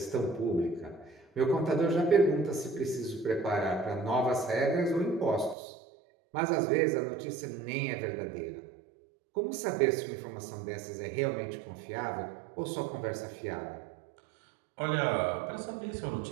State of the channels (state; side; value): drops out; left; at 5.6 s